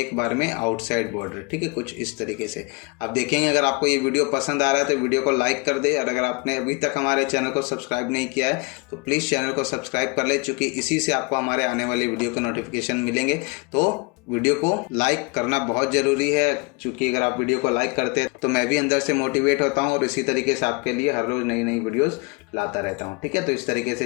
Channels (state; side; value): quieter; right; 29.9 dB